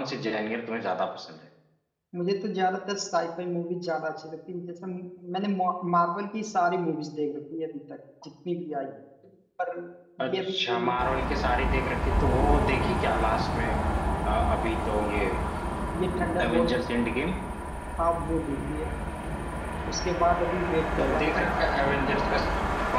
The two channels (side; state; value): both; identical; correlation 1.00